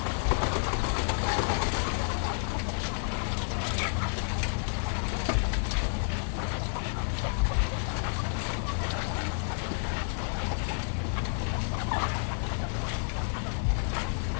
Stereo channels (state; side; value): silent; right; 58 dB below the other